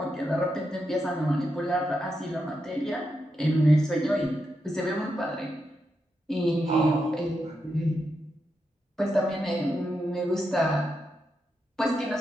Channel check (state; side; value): normal; both; correlation 0.85